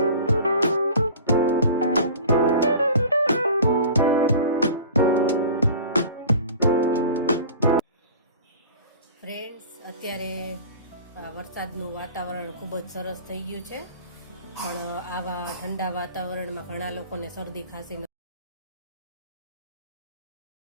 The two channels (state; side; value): inverted; both; correlation -0.41